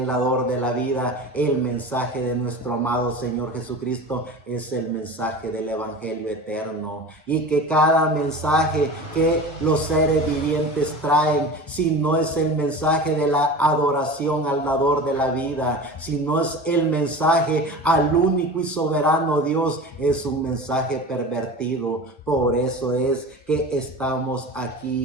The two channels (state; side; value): normal; both; correlation 0.33